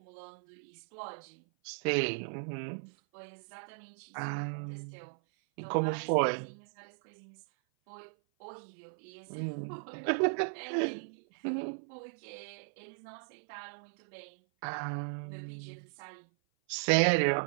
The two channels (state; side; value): silent; left; 54 dB below the other